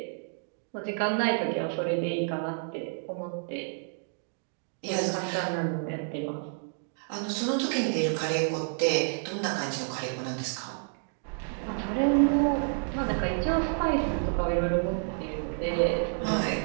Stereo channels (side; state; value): left; silent; 58 dB below the other